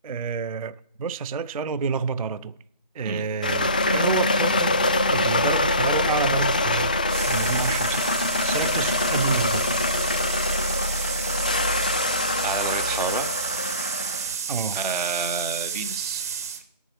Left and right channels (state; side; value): inverted; both; correlation -0.39